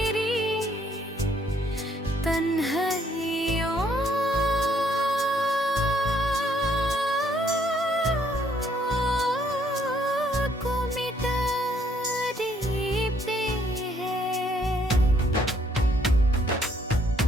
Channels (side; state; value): both; normal; correlation 0.67